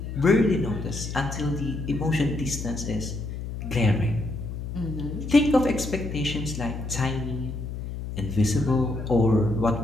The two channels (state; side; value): noise; left; hum, 7 dB below the sound